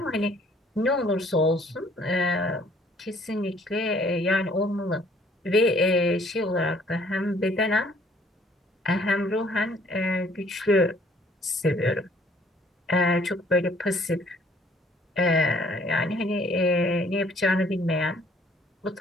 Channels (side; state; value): both; normal; correlation 0.60